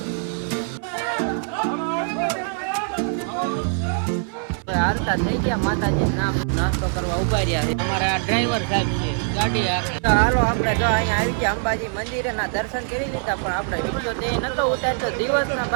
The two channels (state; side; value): silent; left; 63 dB below the other